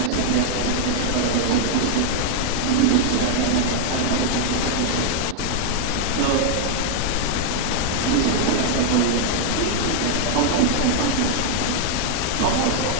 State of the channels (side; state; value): both; different; correlation 0.00